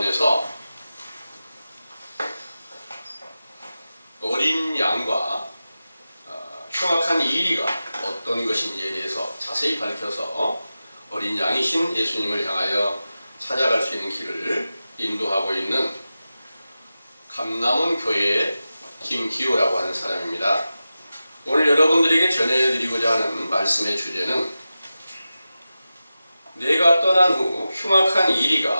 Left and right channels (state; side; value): inverted; both; correlation -0.94